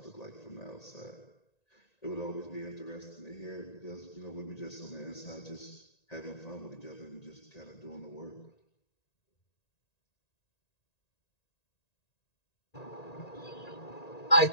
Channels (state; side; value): late; right; 1.9 ms